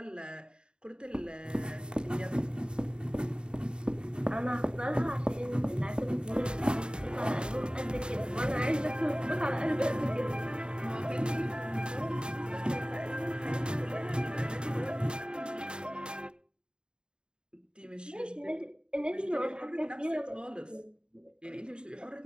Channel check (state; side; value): late; left; 0.049 ms